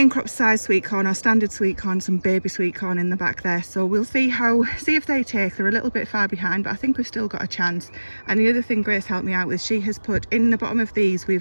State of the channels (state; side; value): inverted; both; correlation -1.00